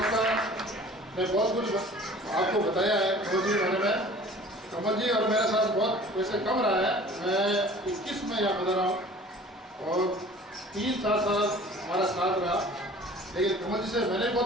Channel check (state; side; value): normal; both; correlation 0.47